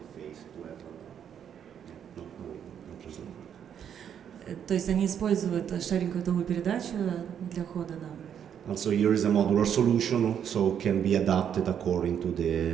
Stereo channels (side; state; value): left; quieter; 8.7 dB